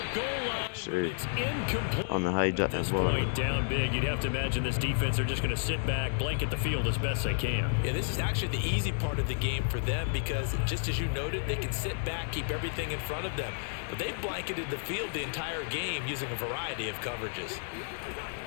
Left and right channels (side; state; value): right; silent; digital silence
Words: goal line. Sure. It's incomplete. I don't know how he dropped At that this ball. point, down big, you'd have to imagine this defense are just going to sit back, blanket the field as best they can. Yeah, this is actually the easy part of the game for them because, just as you noted, they can sit back, keep everything in front of them. But they've blanketed the field the entire game using a variety of coverages.